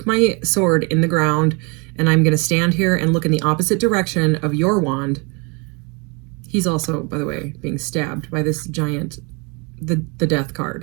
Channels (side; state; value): left; quieter; 31.6 dB